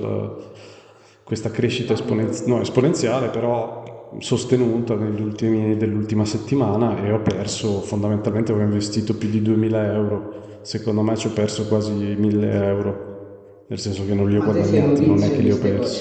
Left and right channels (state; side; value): identical; both; correlation 1.00